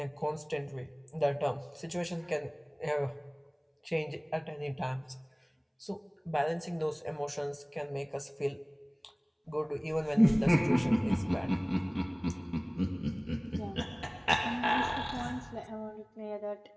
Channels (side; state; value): both; identical; correlation 1.00